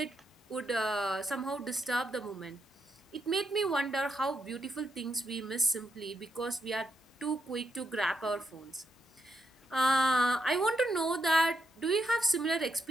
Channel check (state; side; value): normal; both; correlation 0.80